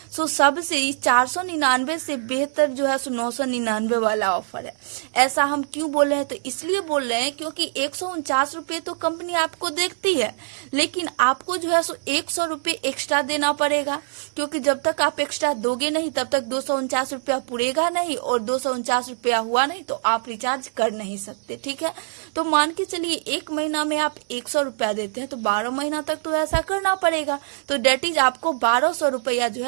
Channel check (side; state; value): left; silent; digital silence